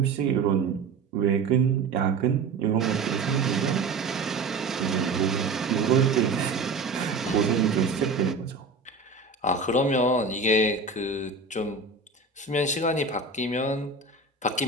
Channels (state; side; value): quieter; left; 3.9 dB